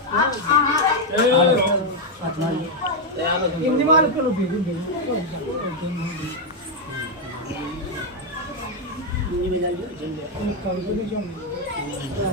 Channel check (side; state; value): both; normal; correlation 0.01